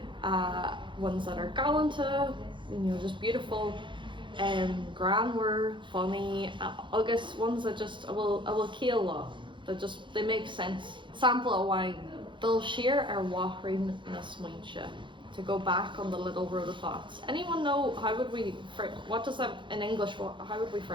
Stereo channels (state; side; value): late; left; 0.23 ms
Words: Ones that are gallanta, you know, just beautiful. Grammar, funny, August ones that just I will kill law, that just they make sense. Sample of wine. They'll share our wahrin na smuinche. To go back on the little road of thoughts. Anyone know how would we what does that in English? How would we